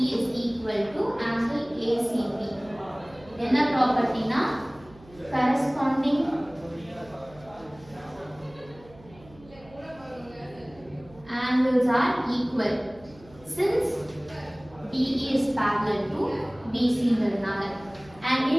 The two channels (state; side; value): noise; right; hum, 23 dB below the sound